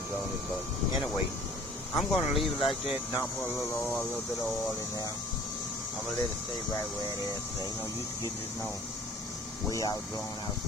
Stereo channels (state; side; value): normal; both; correlation 0.50